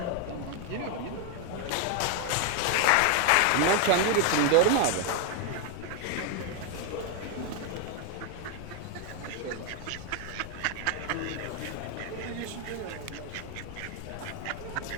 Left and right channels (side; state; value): both; different; correlation 0.01